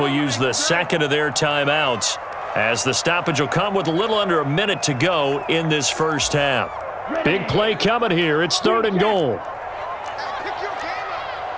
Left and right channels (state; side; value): identical; both; correlation 1.00